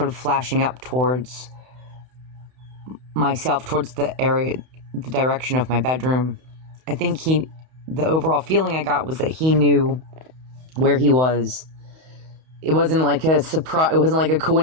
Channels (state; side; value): late; left; 31 ms